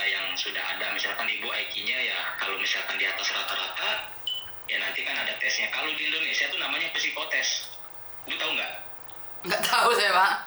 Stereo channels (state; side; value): identical; both; correlation 1.00